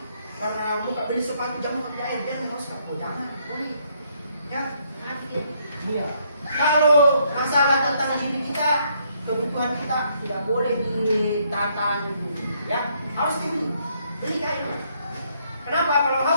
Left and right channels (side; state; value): both; inverted; correlation -0.71